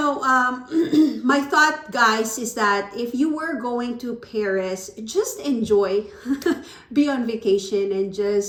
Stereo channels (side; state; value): both; identical; correlation 1.00